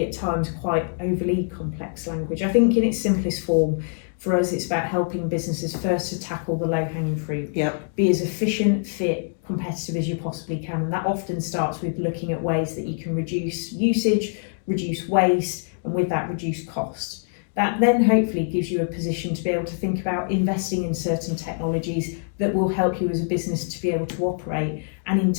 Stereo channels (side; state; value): right; silent; digital silence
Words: at times quite overly complex language. I think in its simplest form, for us, it's about helping businesses first to tackle the low-hanging fruit. Yep. Be as efficient, fit, competitive as you possibly can. And that often starts with looking at ways that you can reduce usage, reduce waste, and with that, reduce cost. That then hopefully gives you a position to be able to think about investing in certain technologies that will help you as a business to be able to operate. And in